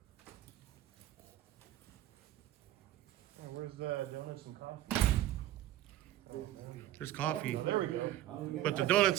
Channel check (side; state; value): left; quieter; 13.9 dB